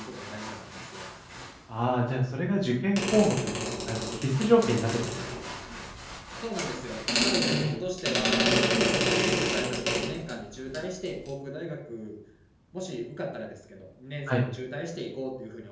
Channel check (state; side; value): identical; both; correlation 1.00